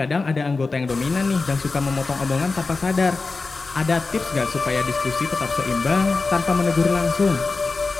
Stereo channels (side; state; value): right; quieter; 3.9 dB